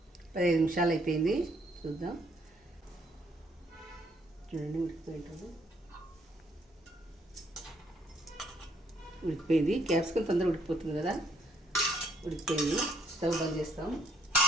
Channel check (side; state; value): both; normal; correlation 0.68